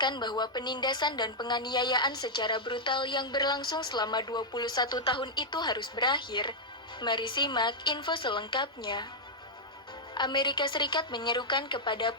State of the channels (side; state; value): both; normal; correlation -0.03